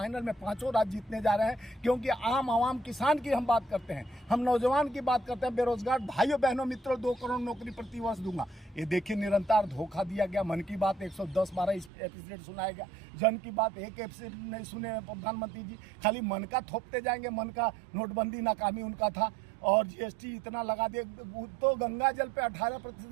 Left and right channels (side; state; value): left; drops out; at 11.9 s